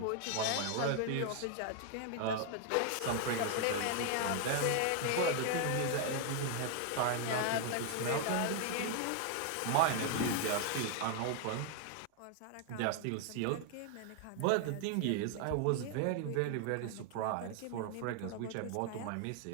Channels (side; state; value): both; different; correlation 0.00